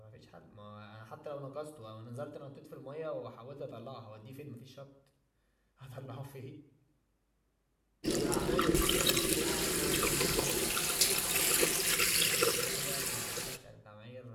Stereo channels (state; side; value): identical; both; correlation 1.00